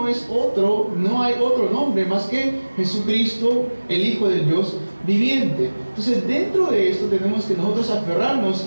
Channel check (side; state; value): both; inverted; correlation -1.00